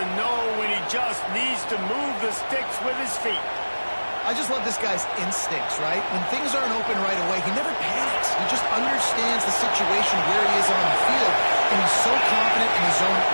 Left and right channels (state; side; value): inverted; both; correlation -1.00